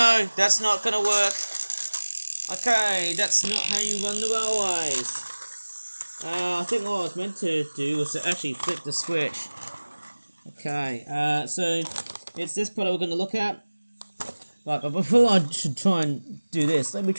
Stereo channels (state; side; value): inverted; both; correlation -1.00